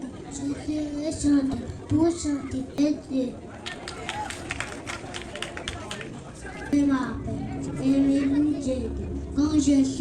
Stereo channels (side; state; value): both; identical; correlation 1.00